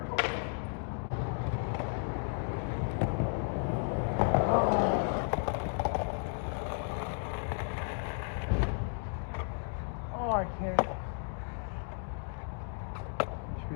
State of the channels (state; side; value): silent; right; 55 dB below the other